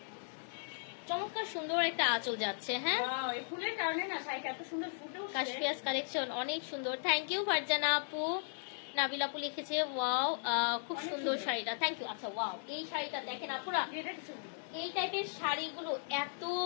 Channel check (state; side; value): silent; right; digital silence